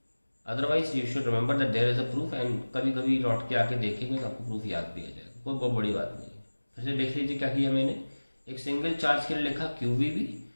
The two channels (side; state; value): both; inverted; correlation -1.00